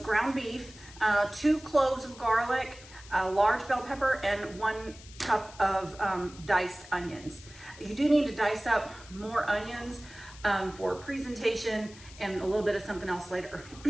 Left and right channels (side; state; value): left; noise; hiss, 19 dB below the sound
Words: ground beef, 2 cloves of garlic, a large bell pepper, and 1 cup of diced onions. You do need to dice up more onions for presentation and a little bit of something else later.